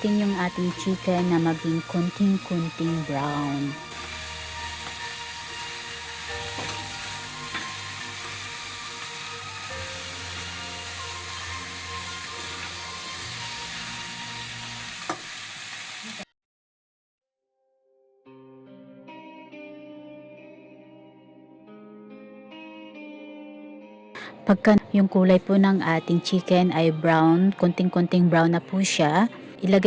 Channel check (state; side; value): identical; both; correlation 1.00